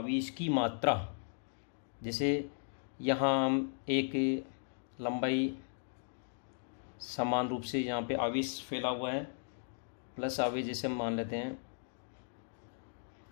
की मात्रा, जैसे यहाँ हम एक लंबाई समान रूप से यहाँ पे आवेश फैला हुआ है, प्लस आवेश जैसे हम मान लेते हैं,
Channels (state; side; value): silent; right; digital silence